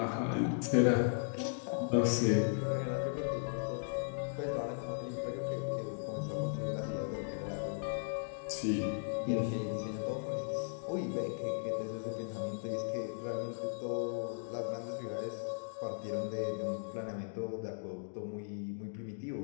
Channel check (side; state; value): right; silent; digital silence